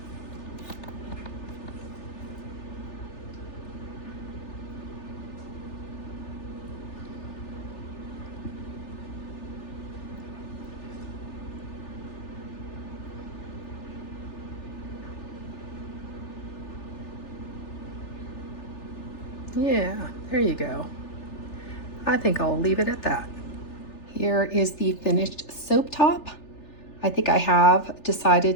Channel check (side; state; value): right; late; 3.4 ms